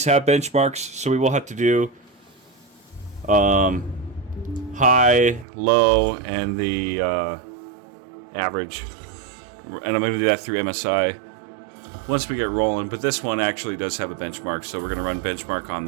have benchmarks, so we will have to do high, low, and the average. And I'm going to do that through MSI once we get rolling. But this one actually does have a benchmark, so we're going to run benchmark on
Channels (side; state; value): left; drops out; at 5.5 s